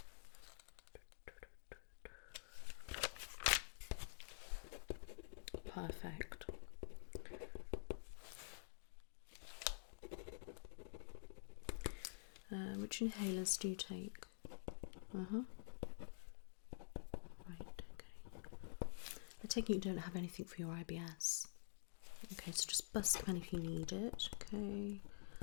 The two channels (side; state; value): right; silent; digital silence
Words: Perfect. Which inhalers do you take? Right, okay. I take it you don't have anything for your IBS. Okay, so just bust them if you need it. Okay,